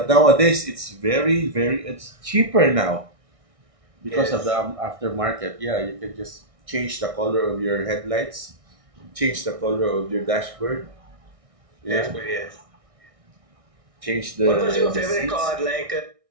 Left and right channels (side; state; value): left; late; 1.6 ms